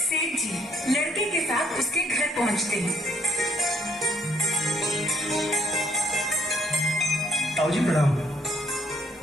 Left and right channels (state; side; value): normal; both; correlation 0.66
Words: जी लड़के के साथ उसके घर पहुंचते हैं। ताऊजी प्रणाम।